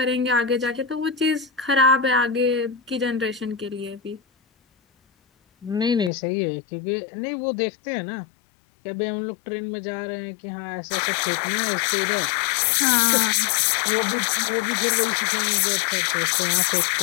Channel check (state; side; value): drops out; right; at 6.1 s